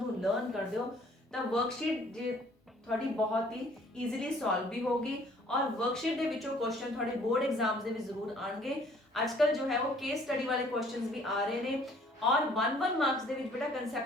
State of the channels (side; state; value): both; normal; correlation 0.58